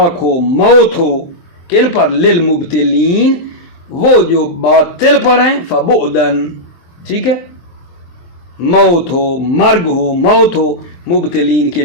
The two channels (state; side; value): late; right; 23 ms